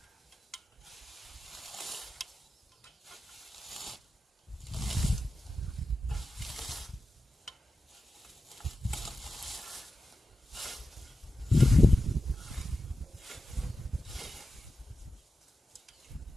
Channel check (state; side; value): normal; both; correlation 0.93